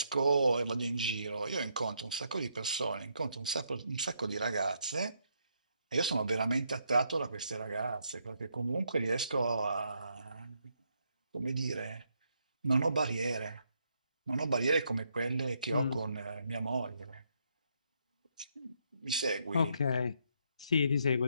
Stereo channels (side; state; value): both; inverted; correlation -0.76